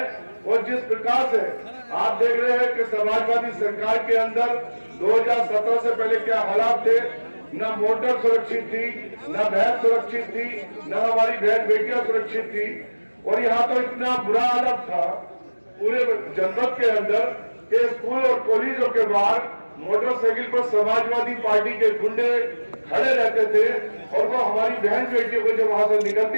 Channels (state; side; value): inverted; both; correlation -1.00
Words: और जिस प्रकार से आप देख रहे हैं कि समाजवादी सरकार के अंदर 2017 से पहले क्या हालात थे, न मोटर सुरक्षित थी, न बहन सुरक्षित थी, न हमारी बहन बेटियां सुरक्षित थी। और यहाँ तो इतना बुरा हालत था पूरे जनपद के अंदर कि स्कूल और कॉलेजों के बाहर मोटरसाइकिल पर समाजवादी पार्टी के गुंडे खड़े रहते थे और वो हमारी बहन बेटियों को जब वहां से